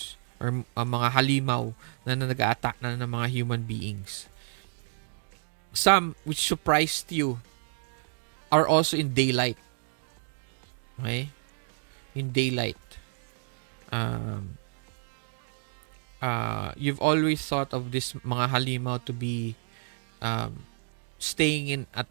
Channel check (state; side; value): silent; left; digital silence